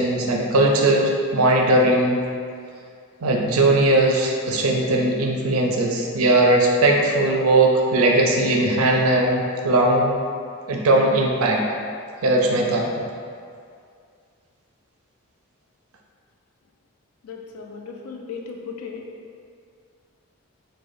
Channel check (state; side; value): normal; both; correlation -0.01